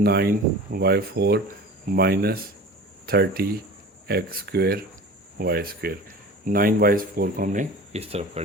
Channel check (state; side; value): normal; both; correlation 0.38